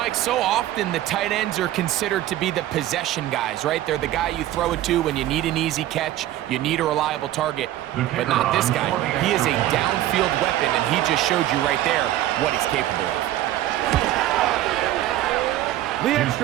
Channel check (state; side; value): quieter; left; 14.0 dB